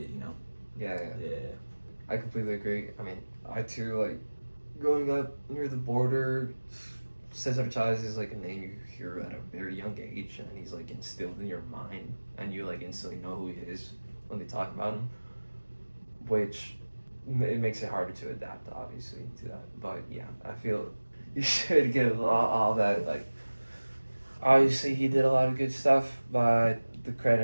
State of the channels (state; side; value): inverted; both; correlation -1.00